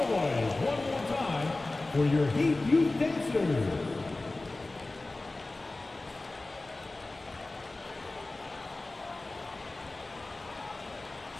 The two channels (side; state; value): right; quieter; 3.0 dB